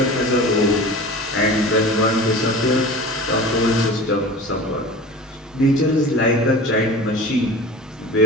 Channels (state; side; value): normal; both; correlation 0.36